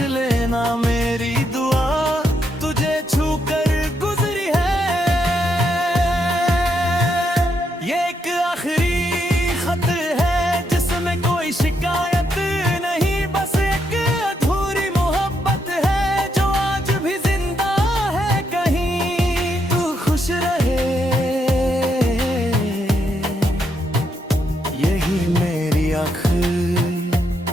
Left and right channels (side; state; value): both; normal; correlation 0.78